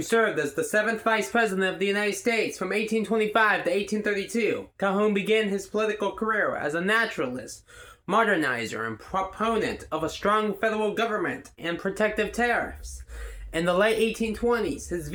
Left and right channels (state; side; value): identical; both; correlation 1.00